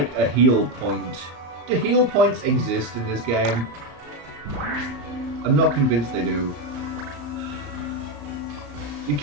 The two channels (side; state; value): left; late; 34 ms